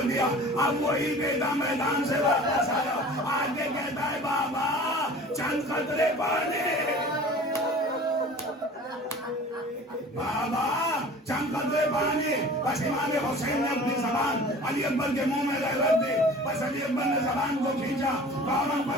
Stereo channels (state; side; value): normal; both; correlation 0.43